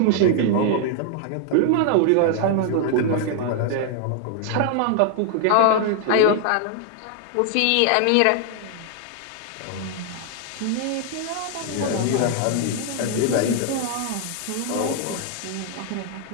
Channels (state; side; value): different; both; correlation 0.00